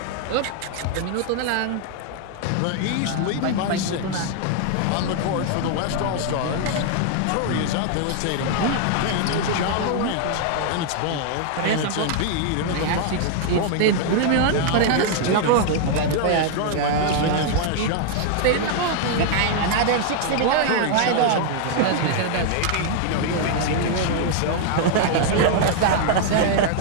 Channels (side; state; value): both; different; correlation 0.00